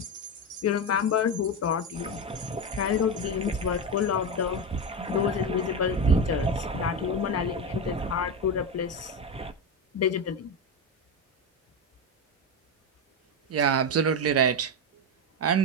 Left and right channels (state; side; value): normal; both; correlation 0.14